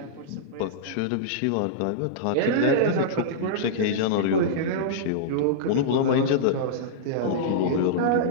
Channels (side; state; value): both; different; correlation -0.03